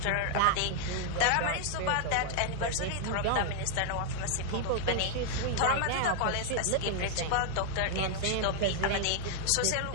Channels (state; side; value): different; both; correlation 0.00